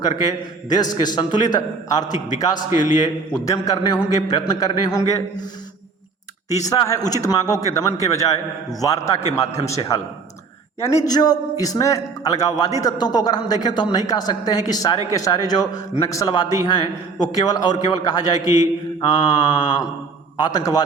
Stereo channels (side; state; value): left; quieter; 4.7 dB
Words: करके देश के संतुलित आर्थिक विकास के लिए उद्यम करने होंगे, प्रयत्न करने होंगे। तीसरा है उचित मांगों के दमन के बजाय वार्ता के माध्यम से हल। यानी जो इसमें अलगाववादी तत्वों को अगर हम देखें तो हम नहीं कह सकते हैं कि सारे के सारे जो नक्सलवादी हैं वो केवल और केवल कहा जाए कि